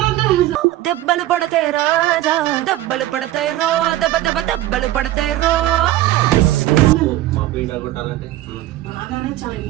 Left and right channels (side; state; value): left; quieter; 14.8 dB